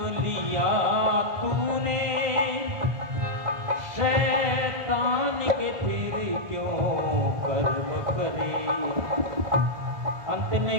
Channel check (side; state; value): left; late; 1.5 ms